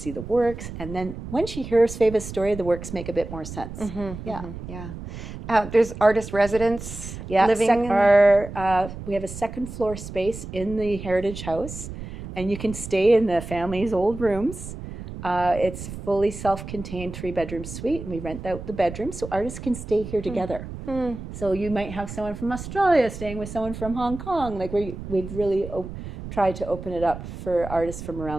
the works. And then when she hears Sveva's story, the works make a bit more sense. There's artist residents living we have a second floor space in the Heritage House, and you can stay in the family's old rooms. It's a fully self-contained 3-bedroom suite, and we rent out the bedrooms so artists can stay here together. So you might have someone from Australia staying with someone from Hong Kong. Like we've really tried to open it up for artists from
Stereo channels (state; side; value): noise; right; rumble, 10 dB below the sound